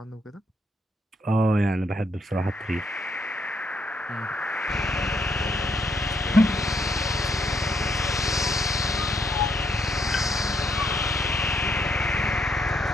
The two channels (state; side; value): normal; both; correlation 0.74